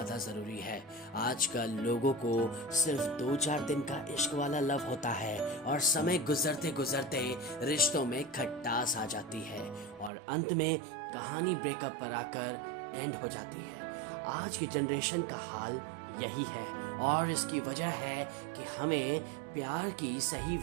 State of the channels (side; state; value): left; drops out; at 10.1 s